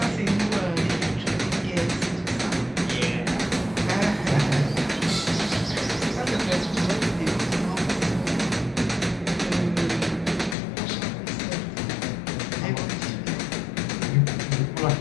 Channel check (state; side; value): drops out; right; at 10.6 s